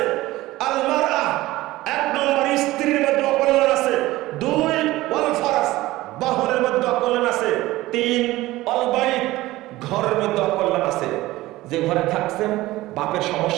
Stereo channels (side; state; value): left; quieter; 17.7 dB